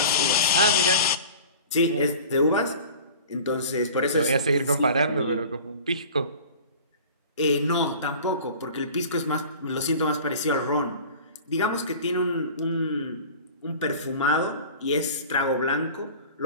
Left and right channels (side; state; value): both; inverted; correlation -0.40